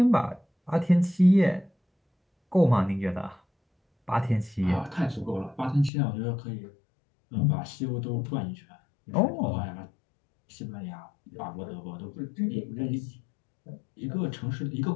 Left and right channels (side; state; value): right; drops out; at 5.9 s